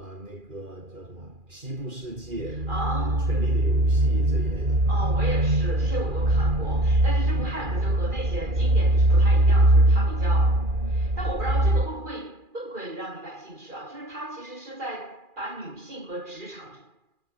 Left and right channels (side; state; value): left; late; 2.4 ms